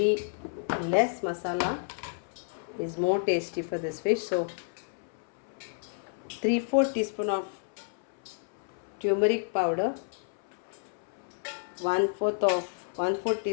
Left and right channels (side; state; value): right; silent; 58 dB below the other